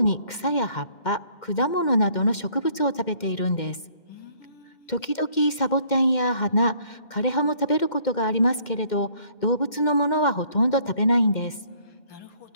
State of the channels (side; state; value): right; late; 2.1 ms